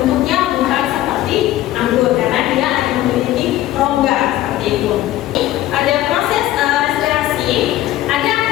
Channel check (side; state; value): right; quieter; 14.6 dB